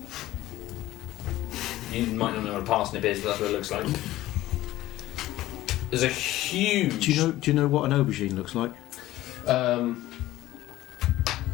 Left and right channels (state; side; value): quieter; right; 15.8 dB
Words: You might not know what a parsnip is, but that's what it looks like. There's a huge... Do you know what an aubergine looks like?